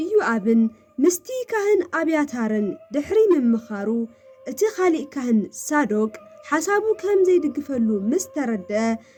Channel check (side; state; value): both; identical; correlation 1.00